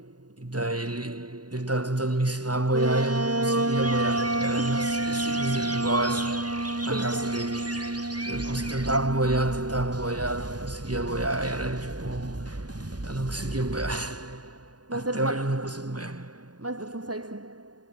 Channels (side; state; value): left; late; 0.69 ms